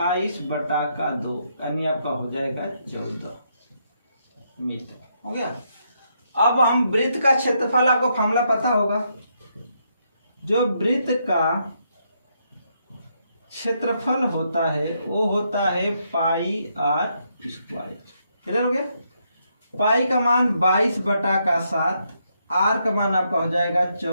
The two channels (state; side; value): inverted; both; correlation -0.77